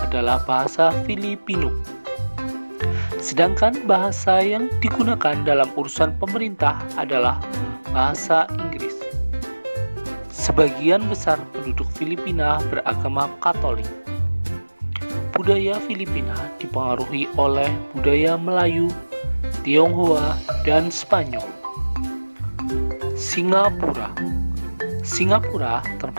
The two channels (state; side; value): inverted; both; correlation -1.00